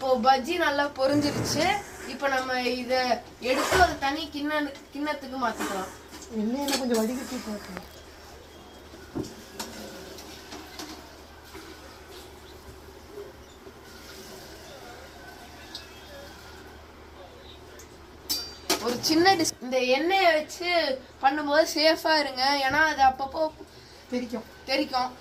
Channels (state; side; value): identical; both; correlation 1.00